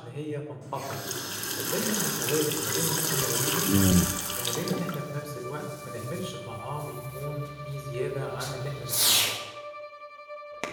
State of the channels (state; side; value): identical; both; correlation 1.00